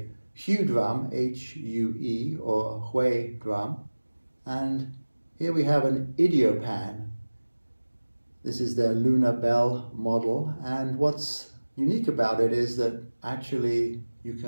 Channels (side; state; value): both; inverted; correlation -1.00